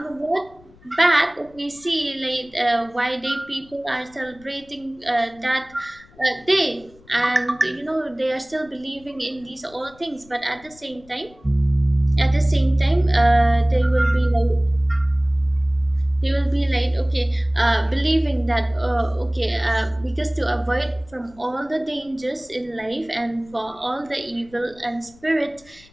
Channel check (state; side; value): noise; left; rumble, 26 dB below the sound